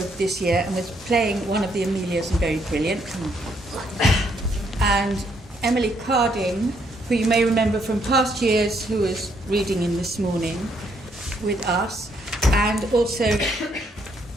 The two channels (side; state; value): both; normal; correlation 0.72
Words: this year and was playing one of the Amelias and very brilliant. And Emily Carding, who you may remember from past years, who was reading in this morning with us. And also